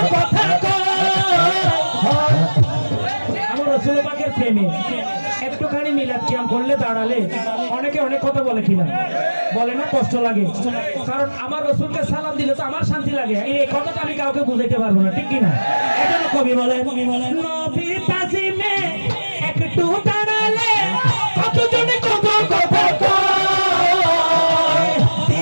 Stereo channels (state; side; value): inverted; both; correlation -1.00